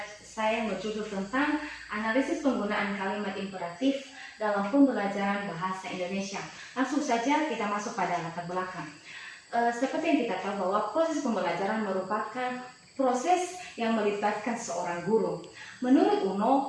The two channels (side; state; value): both; identical; correlation 1.00